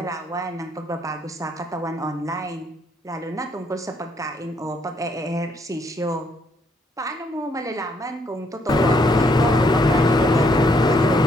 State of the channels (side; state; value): both; normal; correlation 0.71